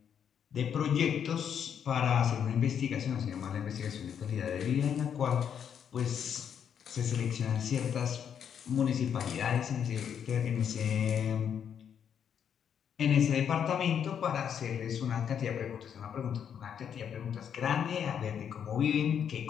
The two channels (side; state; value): right; quieter; 8.2 dB